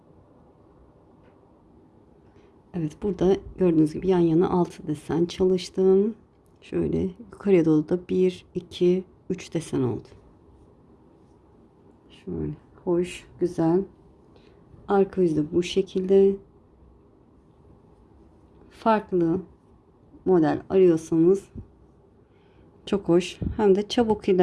Evet, burada gördüğünüz gibi yan yana 6 desen çalıştım. Şöyle yukarıya doğru da 1, 2, 3 desen oldu. Şöyle hoş, güzel. Arka yüzde bu şekilde. Farklı model arıyorsanız çok hoş. Hem de çabuk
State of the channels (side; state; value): both; identical; correlation 1.00